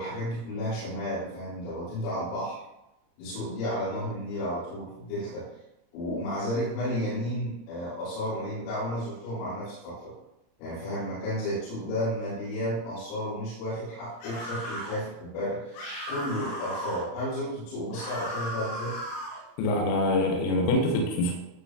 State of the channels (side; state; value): right; late; 35 ms